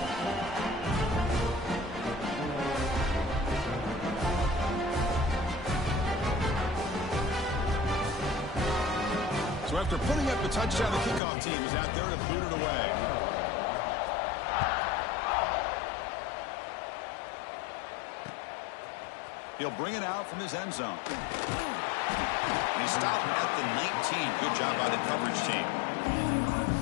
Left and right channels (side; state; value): right; drops out; at 11.2 s